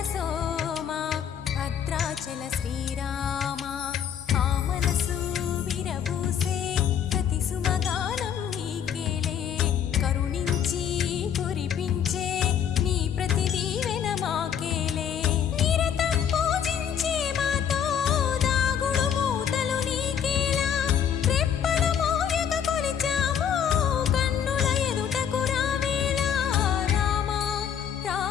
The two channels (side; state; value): right; quieter; 8.6 dB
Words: సోమ భద్రాచల శ్రీరామ. ఆ మనసు విరబూసే ప్రతి సుమగానం నీకేలే, కరుణించి కురిపించే నీ ప్రతి దీవెన మాకేలే. నిరతం పూజించే మాతో దాగుడు మూతలు నీకేలా, రెప్పలు మోయక కొలిచాము కన్నుల ఎదుటకు రావేలా. రామ